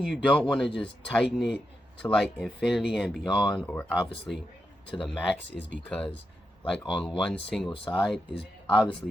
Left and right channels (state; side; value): normal; both; correlation 0.86